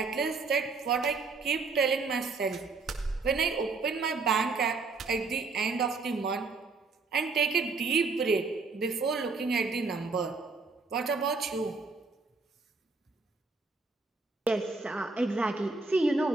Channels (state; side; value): quieter; left; 4.1 dB